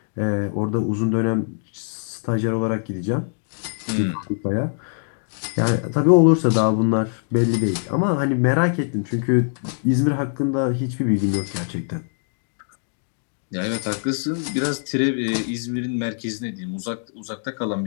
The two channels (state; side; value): silent; right; digital silence